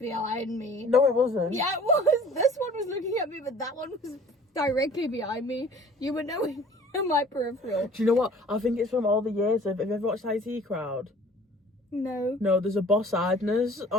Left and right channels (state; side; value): normal; both; correlation 0.49